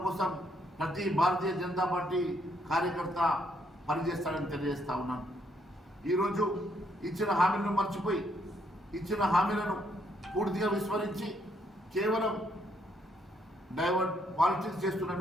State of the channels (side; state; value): both; normal; correlation 0.72